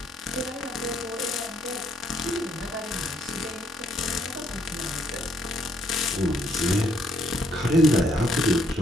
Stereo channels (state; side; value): normal; both; correlation 0.70